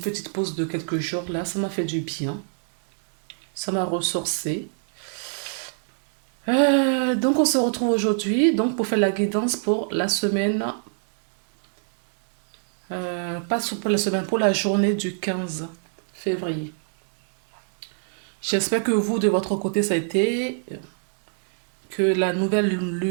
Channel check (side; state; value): left; silent; digital silence